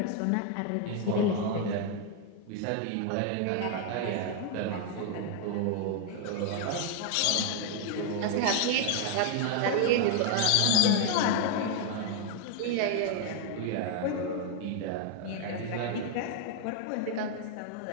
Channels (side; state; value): both; different; correlation 0.00